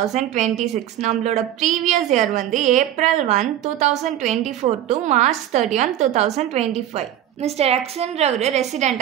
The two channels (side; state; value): left; quieter; 11.8 dB